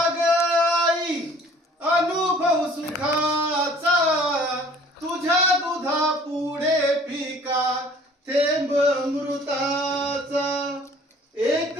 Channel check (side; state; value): both; normal; correlation 0.53